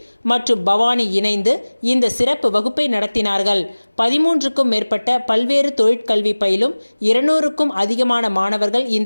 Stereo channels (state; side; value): inverted; both; correlation -1.00